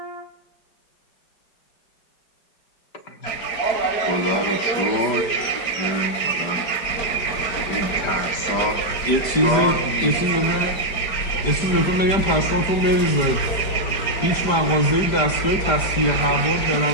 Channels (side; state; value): right; late; 5.0 ms